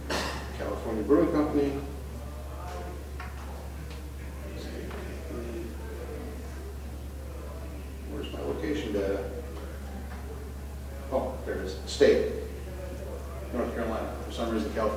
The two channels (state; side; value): identical; both; correlation 1.00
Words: California Brewing Company, where's my location data? Oh, there it is. State. North Carolina. For some reason,